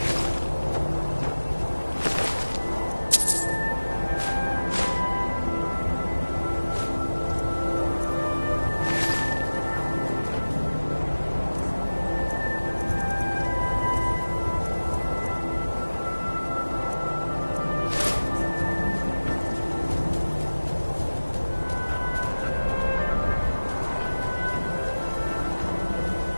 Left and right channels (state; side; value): inverted; both; correlation -1.00